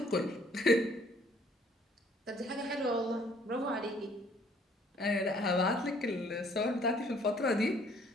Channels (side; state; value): both; normal; correlation 0.61